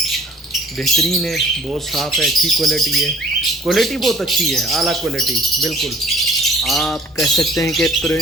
बेहतरीन है, बहुत साफ़ है, अच्छी क्वालिटी है। क्वालिटी बहुत अच्छी है, आला क्वालिटी, बिल्कुल आप कह सकते हैं कि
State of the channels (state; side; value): normal; both; correlation 0.54